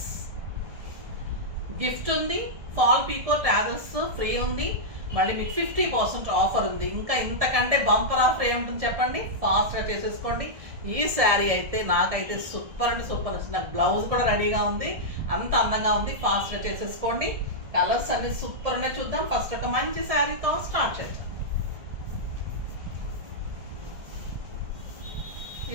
గిఫ్ట్ ఉంది. ఫాల్ పీకో ట్యాజిల్స్ ఫ్రీ ఉంది. మళ్ళీ మీకు 50% ఆఫర్ ఉంది. ఇంకా ఇంతకంటే బంపర్ ఆఫర్ ఏముంటుంది చెప్పండి? ఫాస్ట్గా చేసేసుకోండి. ఈ శారీ అయితే నాకైతే సూపర్ అంటే సూపర్ నచ్చింది. నాకు బ్లౌజ్ కూడా రెడీగా ఉంది. అంత అందంగా ఉంది. ఫాస్ట్గా చేసేసుకోండి. కలర్స్ అన్ని సూపర్ ఉన్నాయి. చూద్దాం. ఫస్ట్ ఒక మంచి శారీతో స్టార్ట్ చేద్దాం.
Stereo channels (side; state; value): left; late; 1.7 ms